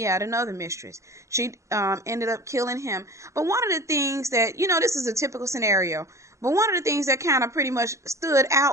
had another mistress. She ended up killing him. But one of the things that, this is a typical scenario, but one of the things that kind of pretty much stood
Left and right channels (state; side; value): late; left; 0.15 ms